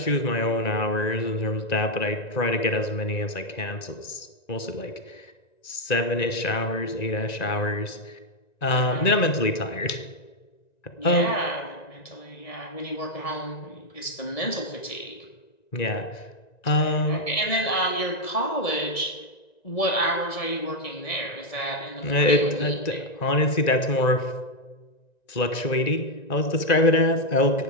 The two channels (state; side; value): late; right; 1.9 ms